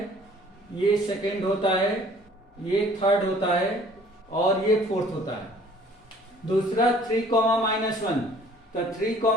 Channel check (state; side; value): normal; both; correlation 0.54